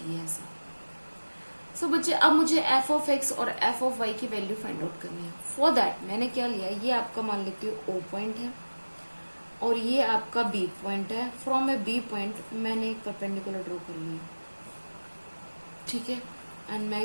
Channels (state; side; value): inverted; both; correlation -1.00